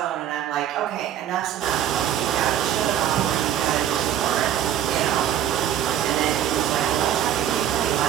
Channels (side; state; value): left; quieter; 10.5 dB